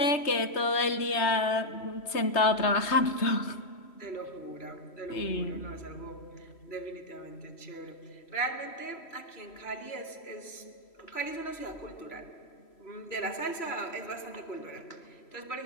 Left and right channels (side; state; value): right; late; 3.0 ms